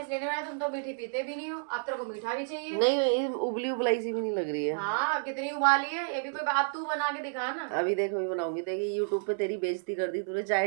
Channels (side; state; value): left; silent; 57 dB below the other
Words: इसलिए नहीं बनाई, तुम तो मीठी पीते भी नहीं हो, अब तेरे को मीठा भी चाहिए। नहीं उबली उबलाई सी भी नहीं लग रही है। हाँ कितनी उबाली है, ये भी कोई बात, तू बना के दिखा ना। अभी देखो अभी बनाऊंगी, देखिए यूट्यूब पे तेरी बेइज्जती कर दी तूने, चाय